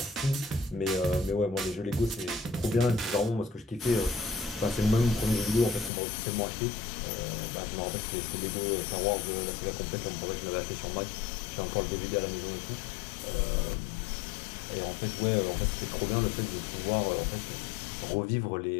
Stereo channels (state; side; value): drops out; right; at 5.9 s